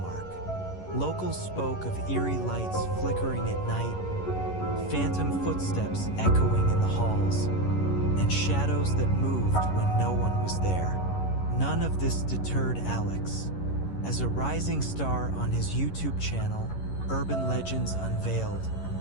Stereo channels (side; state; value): right; late; 11 ms